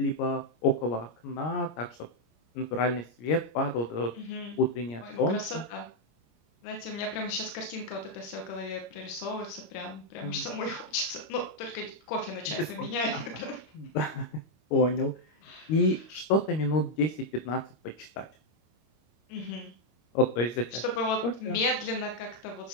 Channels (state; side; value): late; right; 26 ms